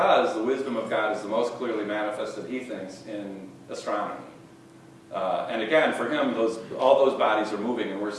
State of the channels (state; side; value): identical; both; correlation 1.00